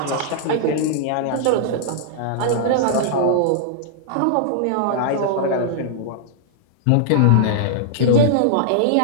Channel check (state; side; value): different; both; correlation -0.01